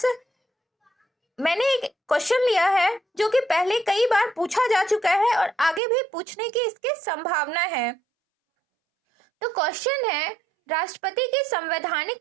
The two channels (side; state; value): left; drops out; at 5.8 s